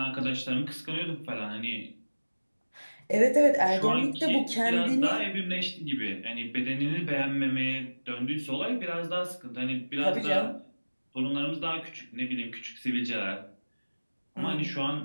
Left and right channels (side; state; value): both; inverted; correlation -1.00